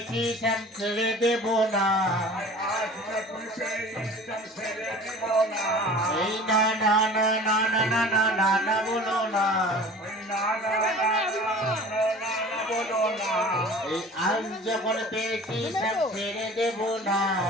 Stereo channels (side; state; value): both; normal; correlation 0.43